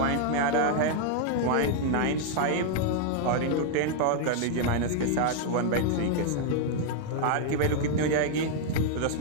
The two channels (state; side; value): different; both; correlation -0.01